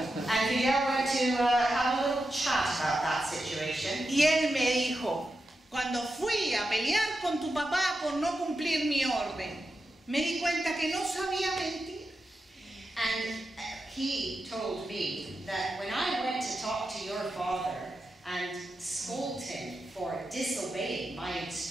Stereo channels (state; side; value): normal; both; correlation 0.89